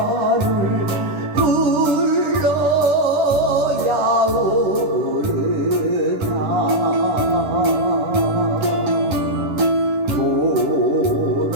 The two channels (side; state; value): left; late; 10 ms